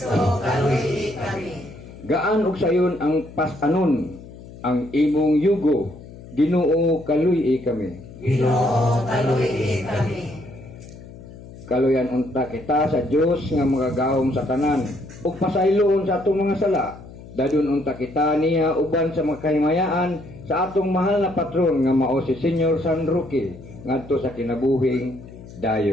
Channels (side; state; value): left; noise; hum, 17 dB below the sound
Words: kaluy kami. Gaan og sayon ang pasanon, ang imong yugo. Ginoo, kaluy kami. Ginoo, kaluy kami. Kaluyan unta kita sa Dios nga magagahom sa tanan ug pasayloon sa atong mga sala. Dadun unta kita niya uban sa mga kahimayaan sa atong mahal na patron nga mao si Senyor San Roque ngadto sa kinabuhing